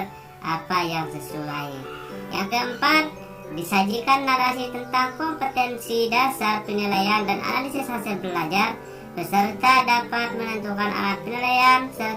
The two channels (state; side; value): identical; both; correlation 1.00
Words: apa yang sesuai. Yang keempat, disajikan narasi tentang kompetensi dasar penilaian dan analisis hasil belajar. Peserta dapat menentukan alat penilaian